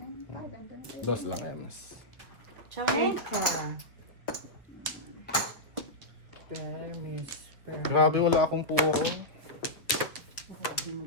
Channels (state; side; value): normal; both; correlation -0.09